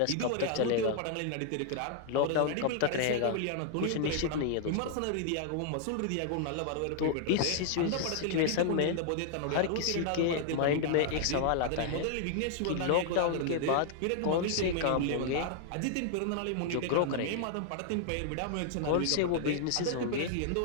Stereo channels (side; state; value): both; different; correlation -0.01